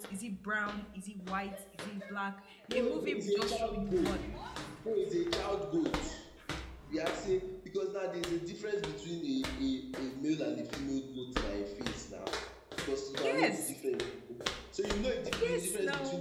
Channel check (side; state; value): both; identical; correlation 1.00